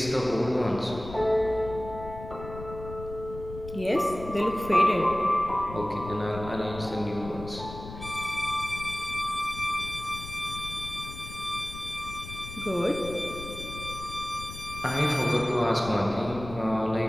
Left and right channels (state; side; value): noise; left; rumble, 12 dB below the sound